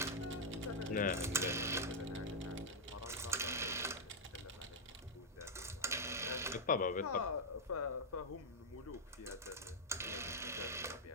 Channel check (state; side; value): normal; both; correlation -0.03